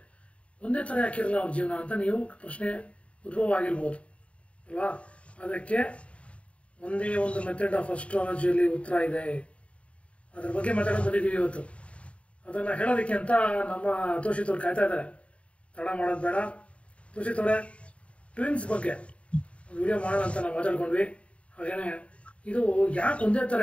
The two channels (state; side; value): late; right; 0.062 ms